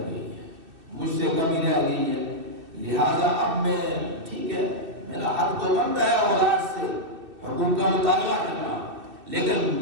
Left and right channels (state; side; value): late; left; 2.6 ms